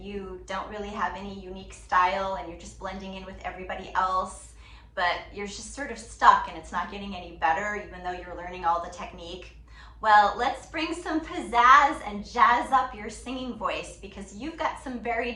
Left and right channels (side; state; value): both; identical; correlation 1.00